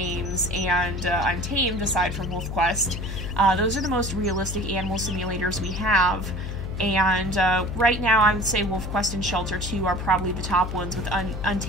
and Untamed, aside from WolfQuest. Those are the most realistic animal simulators we have. And right now, I would say WolfQuest and Shelter 2 are probably the top ones, with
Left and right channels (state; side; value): noise; left; hum, 6 dB below the sound